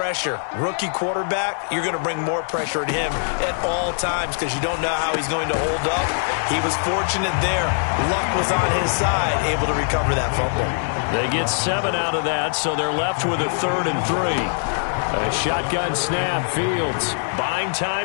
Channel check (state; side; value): silent; right; digital silence